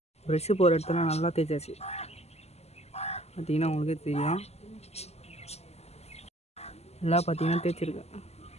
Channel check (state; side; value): late; right; 0.30 ms